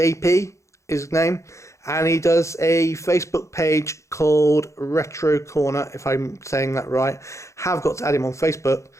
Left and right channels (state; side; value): late; right; 0.14 ms